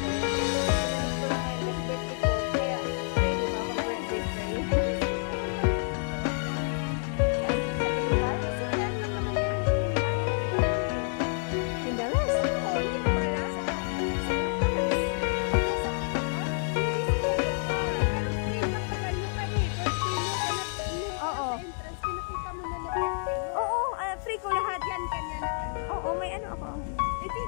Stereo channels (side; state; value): right; silent; digital silence